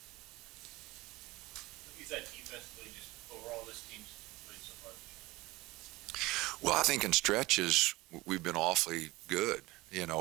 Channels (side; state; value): left; quieter; 20.6 dB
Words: What is that defensively, just overall this team's played so far? Well, I think in stretches we've been awfully good,